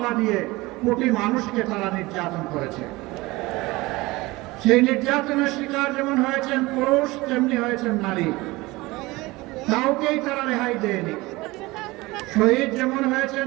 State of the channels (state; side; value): quieter; left; 21.3 dB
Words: দিয়ে কোটি মানুষকে তারা নির্যাতন করেছে। সেই নির্যাতনের শিকার যেমন হয়েছেন পুরুষ, তেমনি হয়েছেন নারী, কাউকেই তারা রেহাই দেয়নি। শহীদ যেমন হয়েছেন